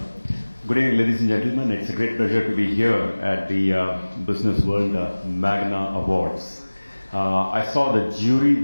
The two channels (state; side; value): inverted; both; correlation -1.00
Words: Good evening, ladies and gentlemen. It's a great pleasure to be here at the Business World Magna Awards. I saw the jury